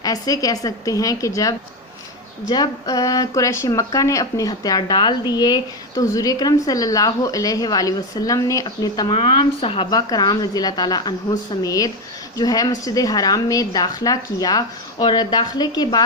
ऐसे कह सकते हैं कि जब جب قریش مکہ نے اپنے ہتھیار ڈال دیے تو حضور اکرم صلی اللہ علیہ وآلہ وسلم نے اپنے تمام صحابہ کرام رضی اللہ تعالیٰ عنہ سمیت جو ہے مسجد حرام میں داخلہ کیا، اور داخلے کے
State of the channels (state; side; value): normal; both; correlation 0.12